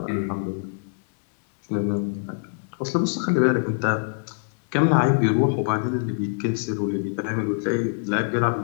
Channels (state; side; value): silent; right; digital silence